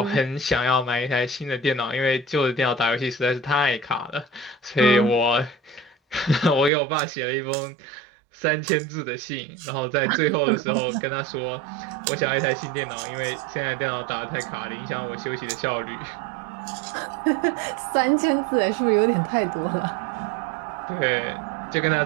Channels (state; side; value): drops out; left; at 6.7 s